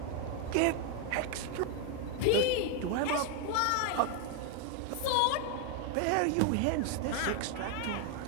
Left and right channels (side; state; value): both; different; correlation 0.01